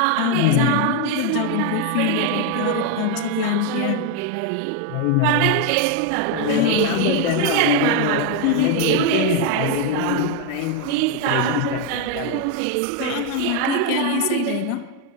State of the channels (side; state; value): both; different; correlation 0.01